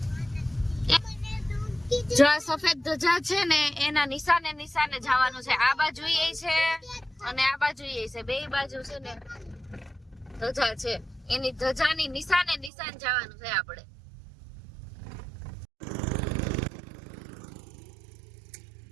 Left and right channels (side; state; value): left; drops out; at 12.7 s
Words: જો આ સફેદ ધજા છે ને એના નિશાને નિશાને જવાનું છે. આ બાજુ એ છે અને આ બાજુ એ છે, બે બાજુ છે ને ધજા છે. એની ધજાની નિશાને નિશાન જવાનું છે આપણે.